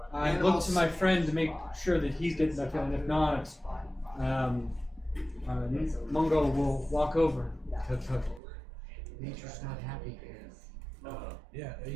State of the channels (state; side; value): drops out; left; at 8.4 s